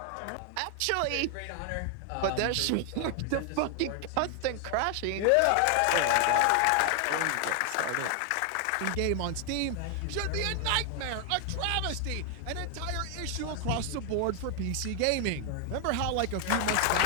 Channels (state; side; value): different; both; correlation 0.00